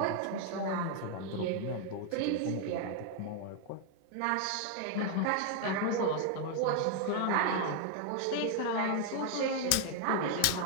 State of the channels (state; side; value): different; both; correlation 0.00